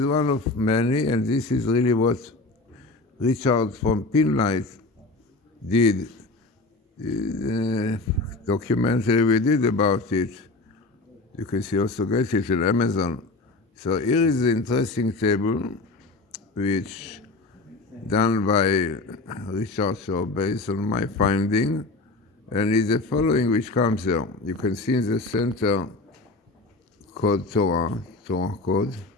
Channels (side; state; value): right; quieter; 3.2 dB